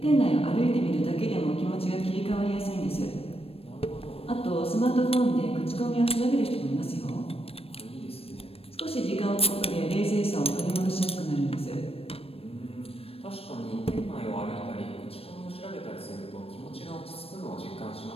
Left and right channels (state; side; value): late; right; 0.28 ms